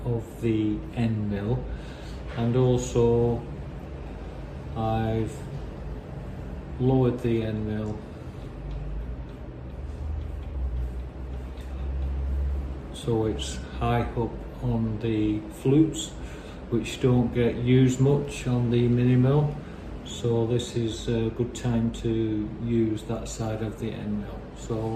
of the end mill, and also I've lowered the end mill so it's high up on the flutes, which don't get used much on the mini mill, so this is a good time to use that side of the end mill. So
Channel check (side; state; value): both; identical; correlation 1.00